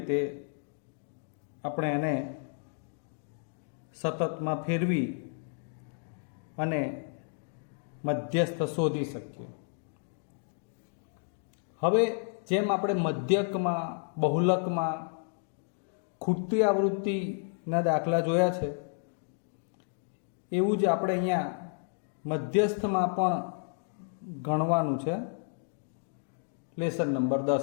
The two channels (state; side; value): silent; right; 57 dB below the other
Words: આપણે એને સતતમાં ફેરવી અને મધ્યસ્થ શોધી શકીએ. હવે જેમ આપણે મધ્યકમાં, બહુલકમાં ખૂટતી આવૃત્તિના દાખલા જોયા છે, એવું જ આપણે અહીંયા મધ્યસ્થમાં પણ ગણવાનું છે લેસન નંબર